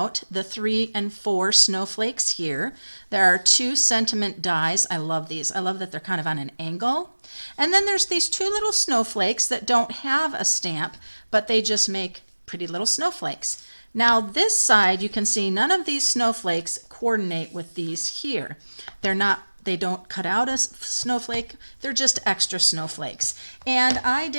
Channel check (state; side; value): inverted; both; correlation -1.00